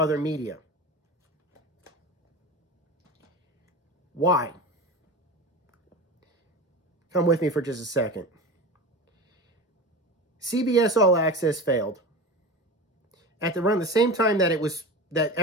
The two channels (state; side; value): normal; both; correlation 0.29